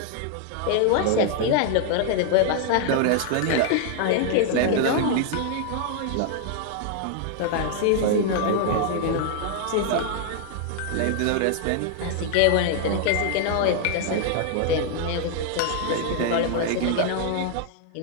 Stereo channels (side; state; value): both; different; correlation 0.00